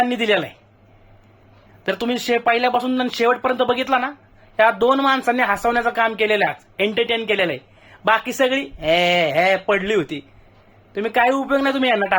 दिलेला आहे. तर तुम्ही पहिल्यापासून शेवटपर्यंत बघितला ना, या 2 माणसांनी हसवण्याचं काम केलेलं आहे, एंटरटेन केलेलं आहे. बाकी सगळी हे हे पडली होती. तुम्ही काही उपयोग नाही तुम्ही यांना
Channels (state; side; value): identical; both; correlation 1.00